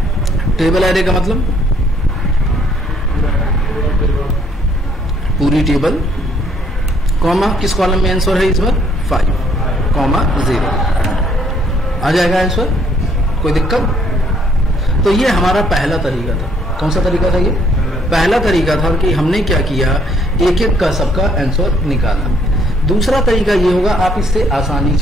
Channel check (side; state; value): both; normal; correlation 0.66